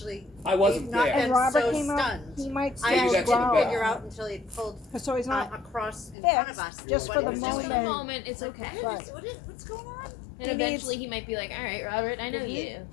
I wasn't not there. and been Robert so came up, stunned. he might I Maybe still that's didn't even growl. figure out until he pulled So he's not across in front of us. fixed, just what for he the was Just doing. for the moment, it's Like, okay. what is- what's going on? And He needs- eventually he might be like, all right, Robert, I know you.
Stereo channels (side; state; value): right; drops out; at 6.2 s